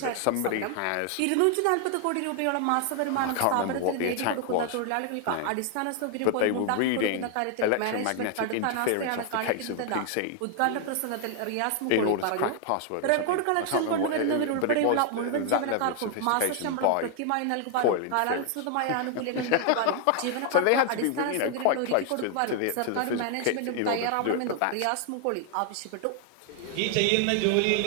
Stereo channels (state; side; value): different; both; correlation 0.00